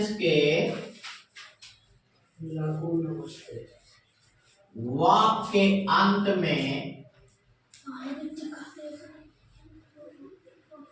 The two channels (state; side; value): identical; both; correlation 1.00